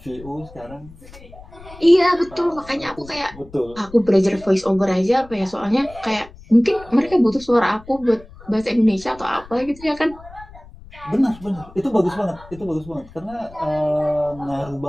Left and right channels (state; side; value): noise; left; rumble, 20 dB below the sound